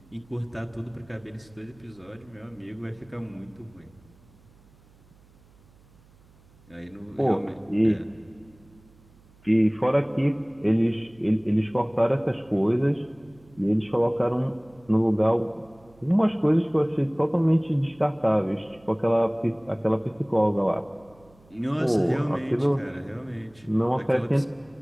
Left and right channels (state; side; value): noise; right; hum, 28 dB below the sound